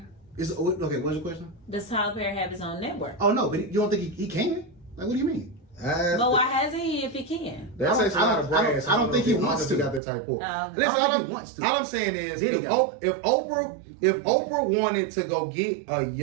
Okay, what's your question? Does Tyler Perry have his own network? Oh no, but you don't think he can? Like, what do you mean? But why hasn't he if he can? That takes a lot of brains. I don't think he wants to. Got that type of. Listen, all I'm saying is, if Oprah wanted to go get a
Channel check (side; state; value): left; drops out; at 10.0 s